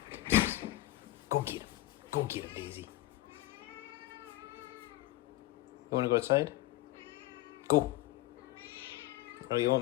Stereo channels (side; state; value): right; quieter; 16.8 dB